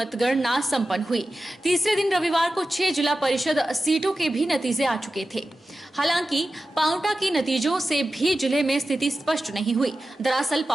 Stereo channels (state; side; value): normal; both; correlation 0.94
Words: संपन्न हुई। तीसरे दिन रविवार को 6 जिला परिषद सीटों के भी नतीजे आ चुके थे। हालांकि पांवटा के नतीजों से भी जिले में स्थिति स्पष्ट नहीं हुई। दरअसल